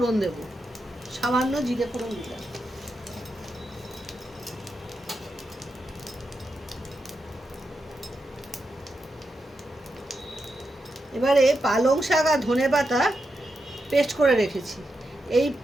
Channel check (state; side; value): normal; both; correlation 0.86